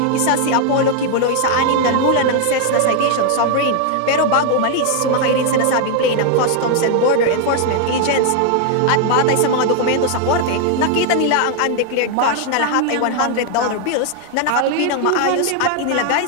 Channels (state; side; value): different; both; correlation 0.00